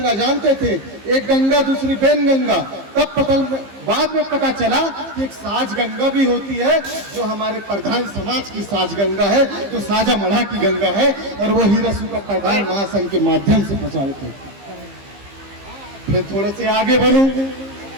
जानते थे, एक गंगा दूसरी बेन गंगा, तब बाद में पता चला कि एक साज गंगा भी होती है जो हमारे प्रधान समाज की साज गंगा है, जो साजा मढ़ा की गंगा है और वो हीरा सूगा प्रधान महासंघ के माध्यम से प्रचारित है। फिर थोड़े से आगे बढ़ूं,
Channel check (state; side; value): late; left; 15 ms